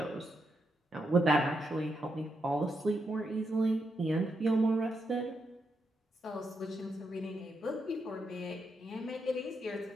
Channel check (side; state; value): both; normal; correlation 0.82